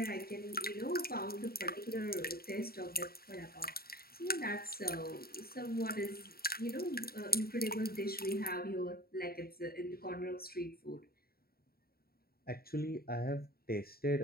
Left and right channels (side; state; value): right; late; 0.44 ms